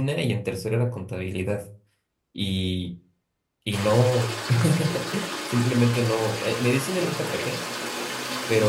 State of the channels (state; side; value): identical; both; correlation 1.00